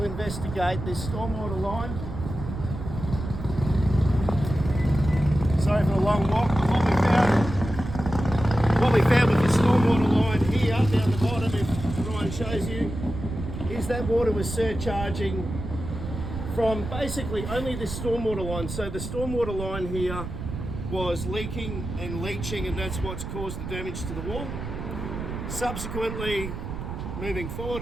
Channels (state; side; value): noise; right; rumble, 7 dB below the sound